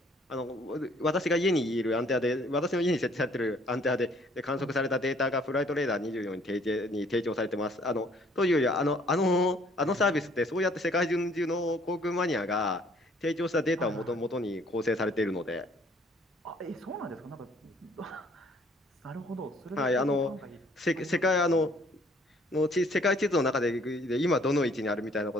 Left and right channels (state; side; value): normal; both; correlation 0.60